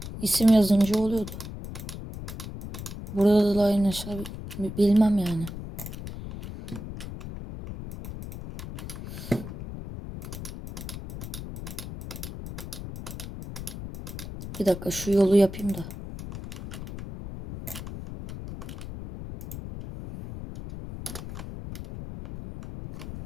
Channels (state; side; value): noise; left; rumble, 9 dB below the sound